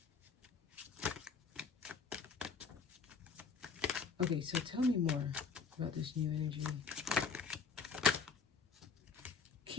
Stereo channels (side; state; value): right; quieter; 5.4 dB